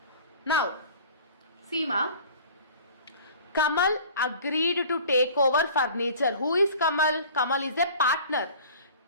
Now, Seema, Kamal agreed to take over furniture. Who is Kamal? Kamal is a partner.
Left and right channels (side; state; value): both; inverted; correlation -0.44